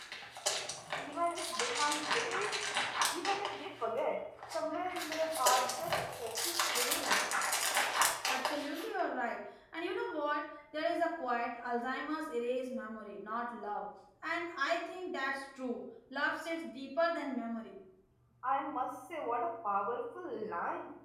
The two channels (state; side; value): identical; both; correlation 1.00